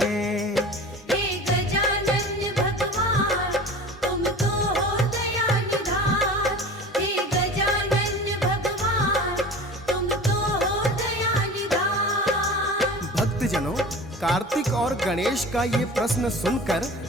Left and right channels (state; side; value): normal; both; correlation 0.37